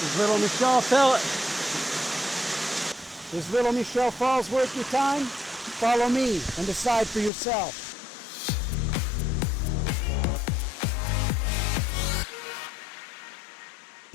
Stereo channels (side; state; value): right; drops out; at 7.3 s